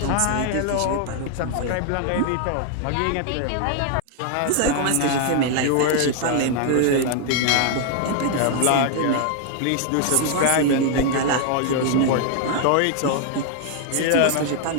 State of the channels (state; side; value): different; both; correlation 0.00